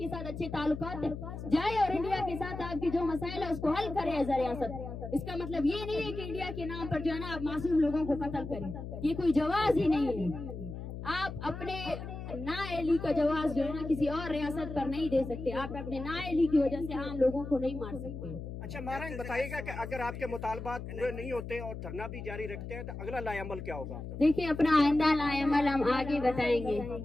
साथ अच्छे ताल्लुकात है। जाए और इंडिया के साथ आपकी जो मसाइल है उसको हल करे एज अ रियासत। इसका मतलब ये नहीं है कि इंडिया के नाम पर जो है ना आप मासूम लोगों को कत्ल करें, ये कोई जवाज ही नहीं है। आप अपने नाअहली का जवाब जो है ना किसी और रियासत पर नहीं दे सकते। आप अपने नाअहली की वजह से आम लोगों को नहीं मार सकते। अच्छा मारंग बताइएगा कि अगर आपके मुतालबात पूरे नहीं होते और धरना भी जारी रखते हैं तो अगला लाएअमल क्या होगा आपका? देखिए, अपना आइंदा लाएअमल हम आगे बताएंगे।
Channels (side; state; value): left; noise; hum, 8 dB below the sound